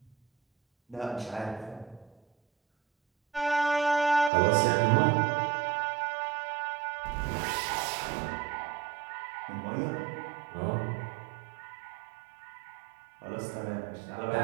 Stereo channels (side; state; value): left; drops out; at 4.3 s